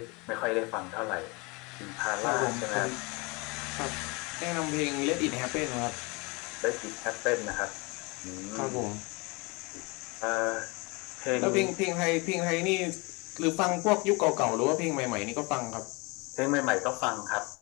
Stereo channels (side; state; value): right; quieter; 27.7 dB